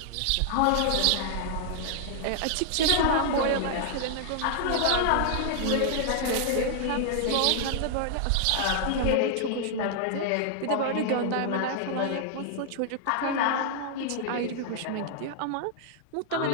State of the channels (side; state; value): both; different; correlation -0.01